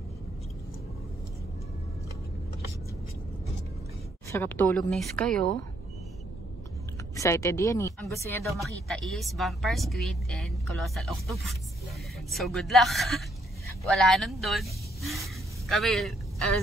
Sarap tulog na kayo. Excited yan eh. Ang gusto niya daw makita is vampire squid and colossal octopus. So good luck. Wala nun doon. Kami,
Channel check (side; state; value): both; normal; correlation 0.70